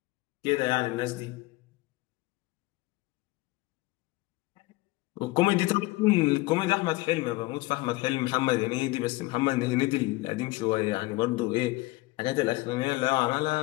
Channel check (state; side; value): quieter; right; 20.7 dB